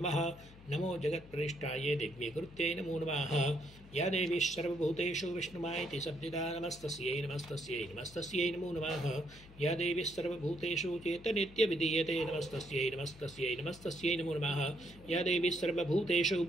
नमो जगत्प्रतिष्ठायै दिव्यकृत्यै नमो नमः या देवी सर्वभूतेषु विष्णुमायति शब्दिता नमस्तस्यै नमस्तस्यै नमस्तस्यै नमो नमः या देवी सर्वभूतेषु चेतनित्यविधीयते नमस्तस्यै नमस्तस्यै नमस्तस्यै नमो नमः या देवी सर्वभूतेषु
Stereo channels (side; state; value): left; noise; hum, 20 dB below the sound